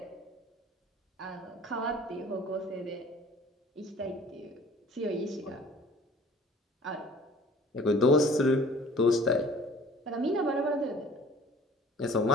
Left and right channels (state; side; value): normal; both; correlation 0.50